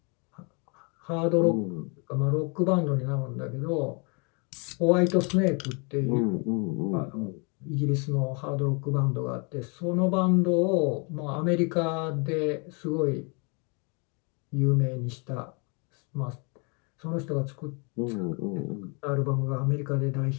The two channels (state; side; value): quieter; right; 33.8 dB